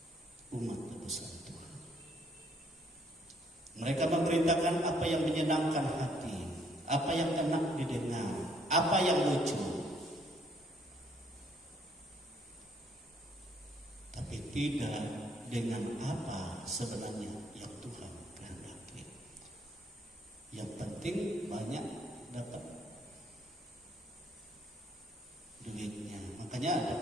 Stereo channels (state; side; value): normal; both; correlation 0.66